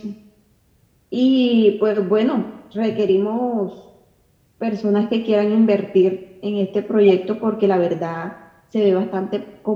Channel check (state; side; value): identical; both; correlation 1.00